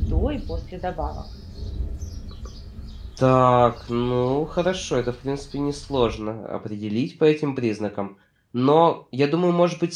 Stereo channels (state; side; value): identical; both; correlation 1.00